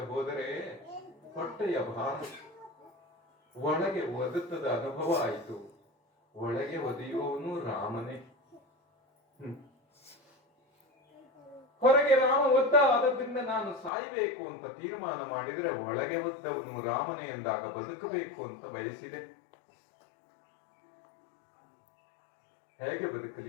ಹೋದರೆ ಹೊಟ್ಟೆಯ ಭಾರ ಒಳಗೆ ಒದತದ ಅನುಭವ ಆಯಿತು. ಒಳಗೆ ಒದೆಯುವವನು ರಾಮನೇ. ಹೊರಗೆ ರಾಮ ಒದ್ದ, ಆದದ್ರಿಂದ ನಾನು ಸಾಯ್ಬೇಕು ಅಂತ ತೀರ್ಮಾನ ಮಾಡಿದ್ರೆ ಒಳಗೆ ಒದ್ದವನು ರಾಮನೇ ಎಂದಾಗ ಬದುಕಬೇಕು ಅಂತ ಬಯಸಿದೆ. ಹೇಗೆ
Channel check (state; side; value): drops out; right; at 13.9 s